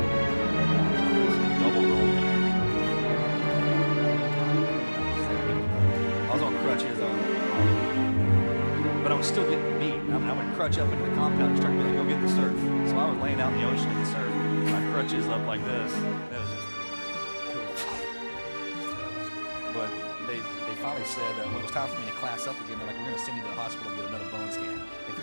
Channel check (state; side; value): inverted; both; correlation -1.00